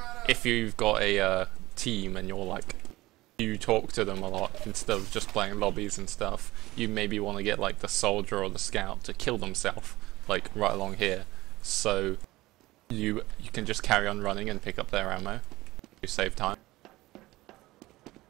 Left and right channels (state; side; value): quieter; left; 18.3 dB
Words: if you've got a team and you're like, you talk to them a lot instead of just playing lobbies and stuff, you maybe want to get like the soldier or the scout to kill themselves like right along here, so you can just carry on running and pick up their ammo. You save time.